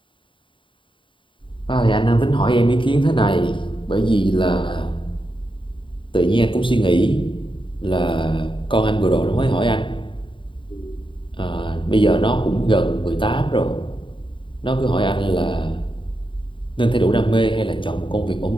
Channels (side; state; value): right; late; 0.24 ms